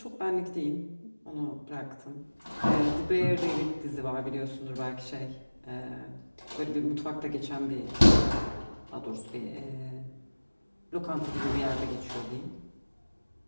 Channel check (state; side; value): inverted; both; correlation -1.00